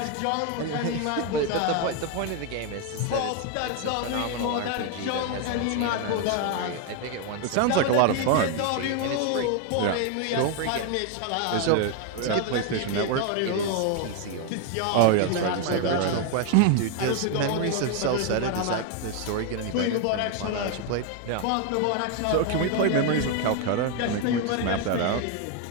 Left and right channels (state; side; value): different; both; correlation 0.01